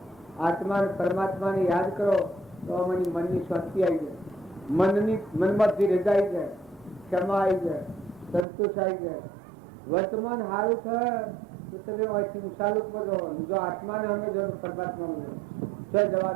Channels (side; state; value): left; drops out; at 8.5 s